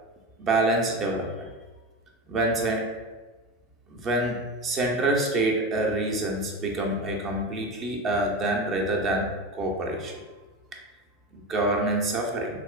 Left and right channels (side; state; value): both; normal; correlation 0.24